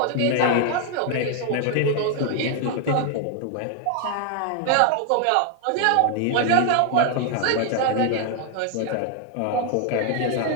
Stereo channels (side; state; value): both; different; correlation 0.00